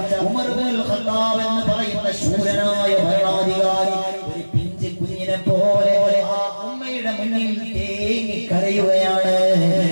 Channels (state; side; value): inverted; both; correlation -1.00